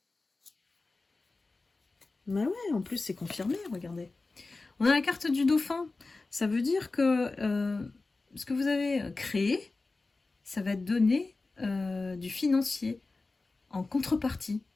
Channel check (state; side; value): quieter; right; 3.6 dB